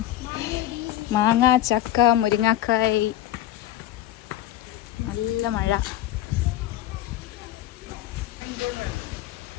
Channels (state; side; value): quieter; right; 13.2 dB